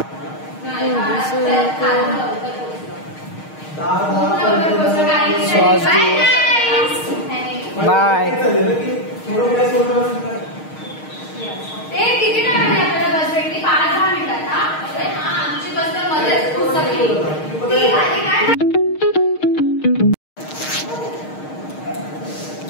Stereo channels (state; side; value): late; right; 6.5 ms